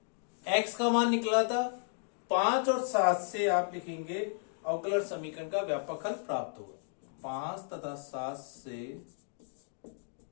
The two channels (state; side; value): silent; right; digital silence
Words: x का मान निकला था 5 और 7 से आप लिखेंगे अवकलन समीकरण का व्यापक हल प्राप्त होगा। 5 तथा 7 से